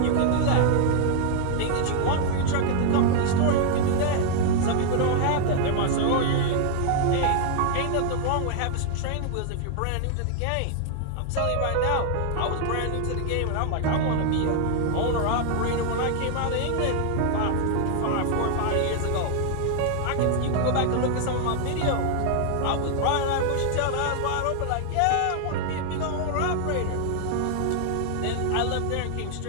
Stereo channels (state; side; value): different; both; correlation -0.01